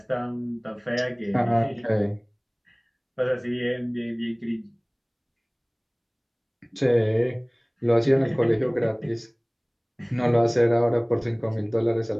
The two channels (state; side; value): identical; both; correlation 1.00